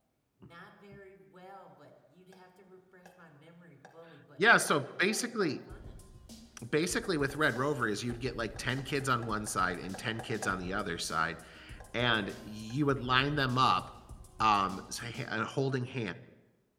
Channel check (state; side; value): identical; both; correlation 1.00